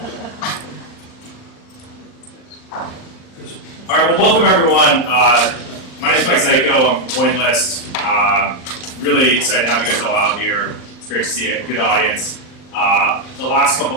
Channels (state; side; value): late; right; 39 ms